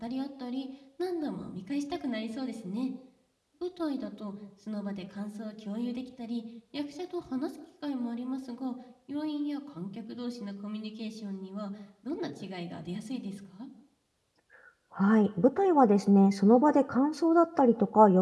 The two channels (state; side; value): identical; both; correlation 1.00